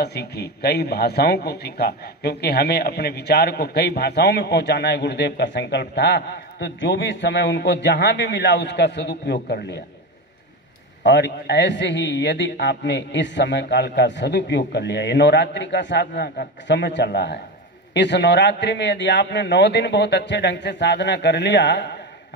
सीखी, कई भाषाओं को सीखा, क्योंकि हमें अपने विचार को कई भाषाओं में पहुंचाना है, गुरुदेव का संकल्प था। तो जो भी समय उनको जहां भी मिला उसका सदुपयोग कर लिया। और ऐसे ही यदि आपने इस समय काल का सदुपयोग कर लिया, ये नवरात्रि का साधना का समय चल रहा है, इस नवरात्रि में यदि आपने 9 दिन बहुत अच्छे ढंग से साधना कर लिया,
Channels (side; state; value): both; normal; correlation 0.19